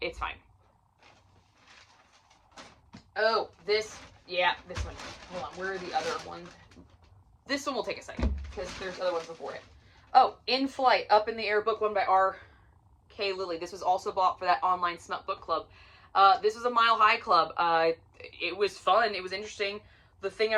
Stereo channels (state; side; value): identical; both; correlation 1.00